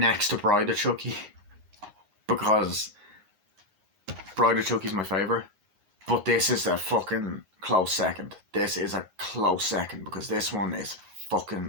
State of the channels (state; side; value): late; left; 9.6 ms